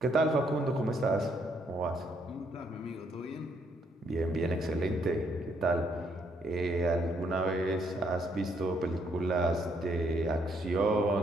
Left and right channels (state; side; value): normal; both; correlation 0.71